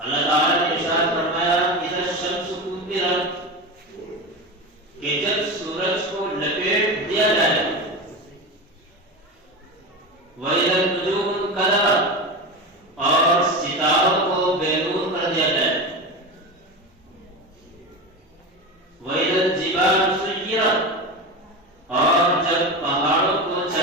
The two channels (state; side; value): normal; both; correlation 0.23